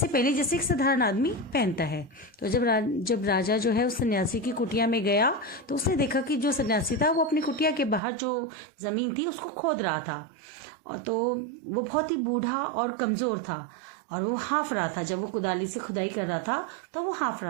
पहले जैसे एक साधारण आदमी पहनता है। तो जब राजा जो है उस सन्यासी की कुटिया में गया तो उसने देखा कि जो सन्यासी था वो अपनी कुटिया के बाहर जो ज़मीन थी उसको खोद रहा था। और तो वो बहुत ही बूढ़ा और कमज़ोर था और वो हाँफ रहा था। जब वो कुदाली से खुदाई कर रहा था तो वो हाँफ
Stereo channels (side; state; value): left; drops out; at 8.0 s